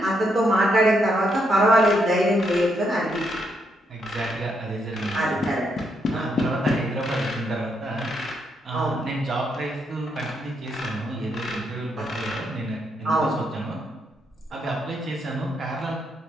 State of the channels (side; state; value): both; normal; correlation 0.77